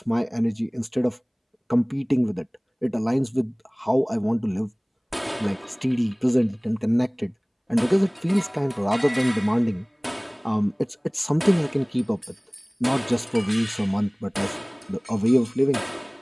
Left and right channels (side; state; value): both; identical; correlation 1.00